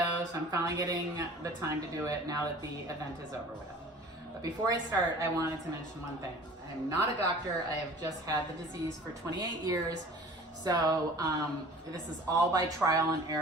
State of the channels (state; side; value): normal; both; correlation 0.45